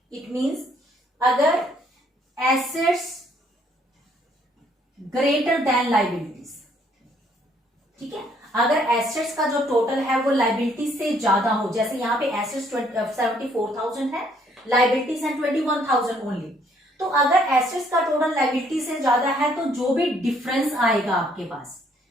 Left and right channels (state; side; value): normal; both; correlation 0.66